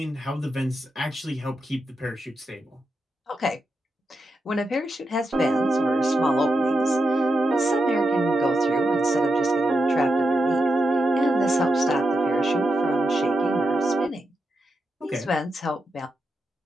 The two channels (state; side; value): normal; both; correlation 0.86